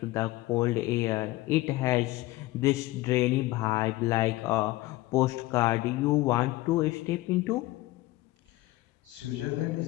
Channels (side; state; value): right; quieter; 18.4 dB